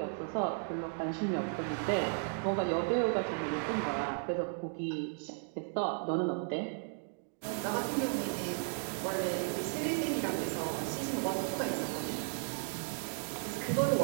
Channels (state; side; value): silent; left; 54 dB below the other